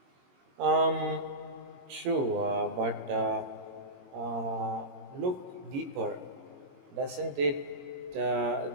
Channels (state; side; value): late; left; 22 ms